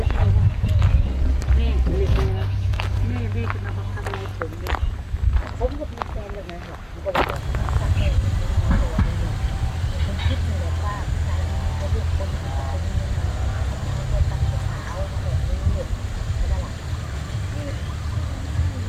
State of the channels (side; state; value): both; identical; correlation 1.00